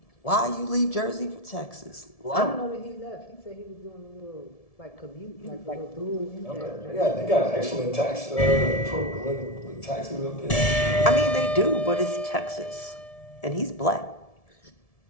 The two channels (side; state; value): right; late; 1.7 ms